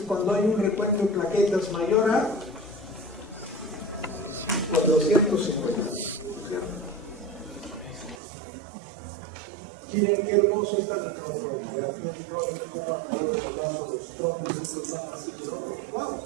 hay un recuento de plaquetas mayor a 450, ¿no es cierto? Miren qué hermoso esta microfotografía electrónica, cómo alrededor de los vasos los trombocitos van haciendo. ¡Wow!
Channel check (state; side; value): drops out; left; at 8.2 s